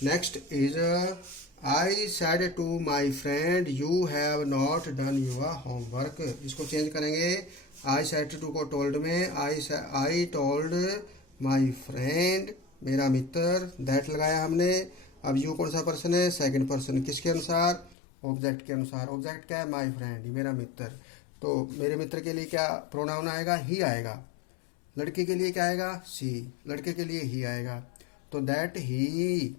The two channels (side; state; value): right; drops out; at 17.9 s